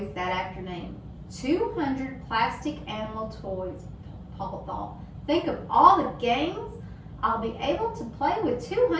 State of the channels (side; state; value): both; identical; correlation 1.00